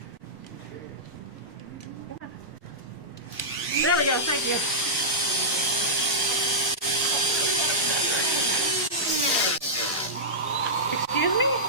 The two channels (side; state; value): both; normal; correlation -0.12